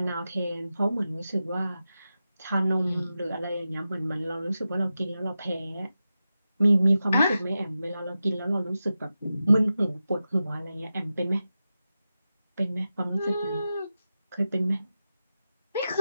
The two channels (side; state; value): both; inverted; correlation -0.91